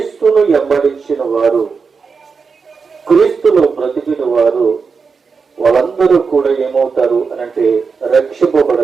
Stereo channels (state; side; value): quieter; left; 5.2 dB